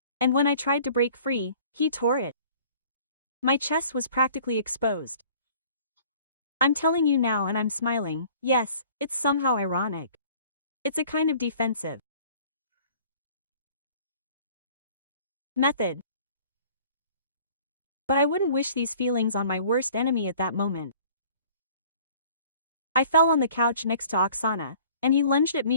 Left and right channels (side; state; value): both; inverted; correlation -0.51